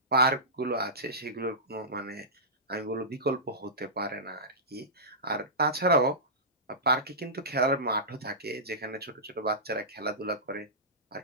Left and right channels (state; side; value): normal; both; correlation -0.17